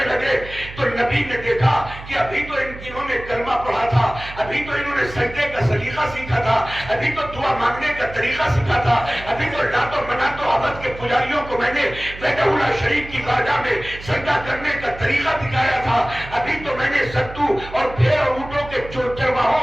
لگے، تو نبی نے دیکھا کہ ابھی تو انہوں نے کلمہ پڑھا تھا، ابھی تو انہوں نے سجدے کا سلیقہ سیکھا تھا، ابھی تو دعا مانگنے کا طریقہ سیکھا تھا، ابھی تو لات و منات و عبد کے پجاریوں کو میں نے بیت اللہ شریف کی بارگاہ میں سجدہ کرنے کا طریقہ دکھایا تھا، ابھی تو میں نے ستو اور بھیڑ اور اونٹوں کے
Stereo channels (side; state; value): right; noise; hum, 14 dB below the sound